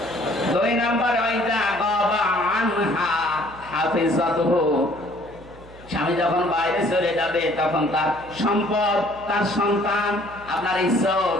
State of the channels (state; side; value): noise; right; hum, 20 dB below the sound